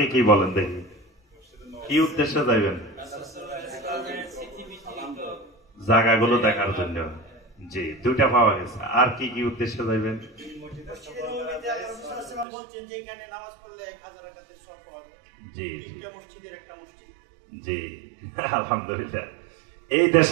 কি বলেন দেখি, কি উদ্দেশ্যে যাবেন? জায়গাগুলো দেখার জন্য। জি, দুইটা পাওয়া গেছে। আর কি কি উদ্দেশ্যে যাবেন? জি জি আলহামদুলিল্লাহ। এই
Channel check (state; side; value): drops out; left; at 12.5 s